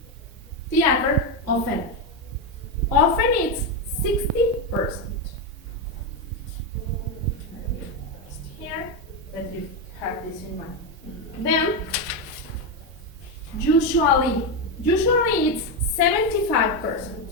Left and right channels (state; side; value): normal; both; correlation 0.09